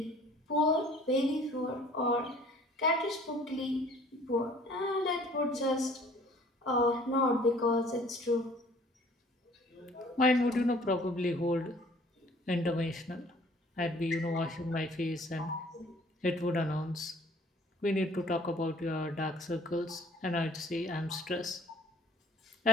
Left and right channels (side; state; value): both; normal; correlation 0.54